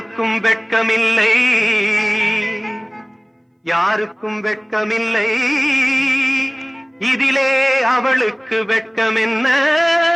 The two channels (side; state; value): both; identical; correlation 1.00